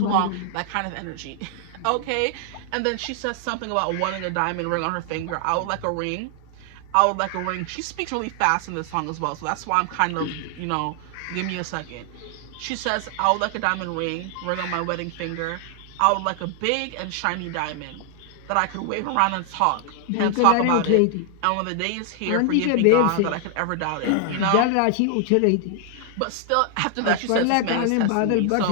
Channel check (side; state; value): both; different; correlation 0.00